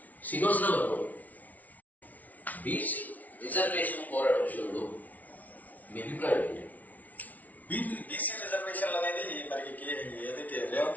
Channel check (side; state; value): right; late; 0.074 ms